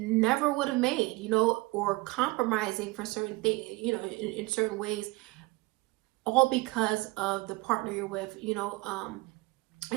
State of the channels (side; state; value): left; quieter; 23.0 dB